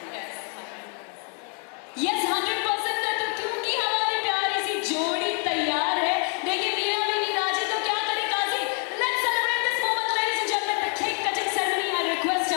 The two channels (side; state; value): right; quieter; 39.4 dB